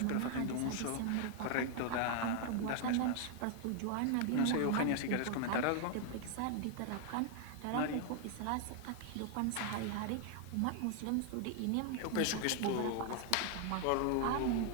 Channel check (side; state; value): both; different; correlation 0.00